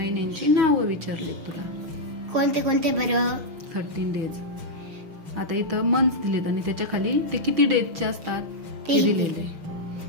नावं विचारले तुला. कोणते कोणते बरं? 13 days. आता इथं मंथ्स दिलेत आणि त्याच्या खाली ते किती डेजचे असतात ते दिलेले.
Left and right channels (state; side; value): late; left; 6.2 ms